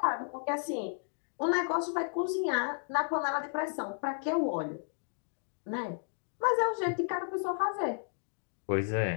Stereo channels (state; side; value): silent; right; digital silence